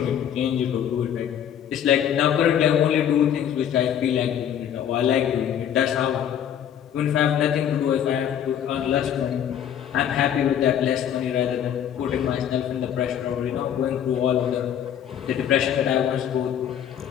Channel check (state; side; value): quieter; right; 9.5 dB